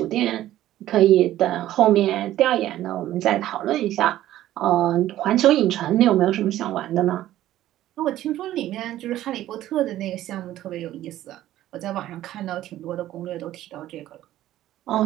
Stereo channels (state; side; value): quieter; left; 13.7 dB